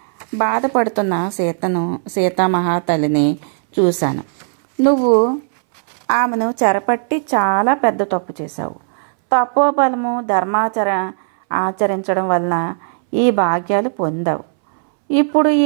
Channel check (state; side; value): silent; left; 65 dB below the other